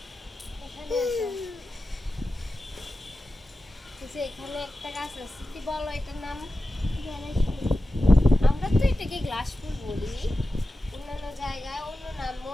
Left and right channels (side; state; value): both; normal; correlation 0.93